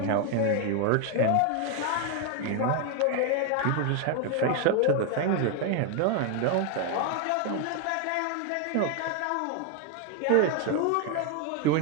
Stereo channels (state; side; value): different; both; correlation 0.01